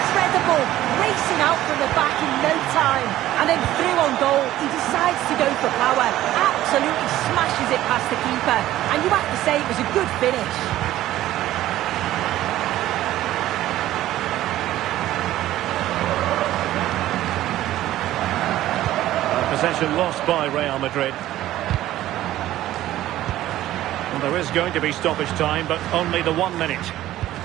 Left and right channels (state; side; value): quieter; left; 14.3 dB